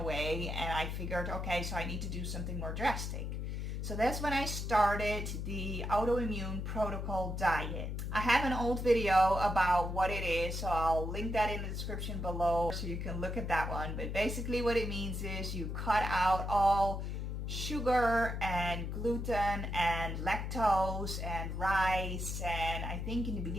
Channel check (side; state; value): left; noise; hum, 3 dB below the sound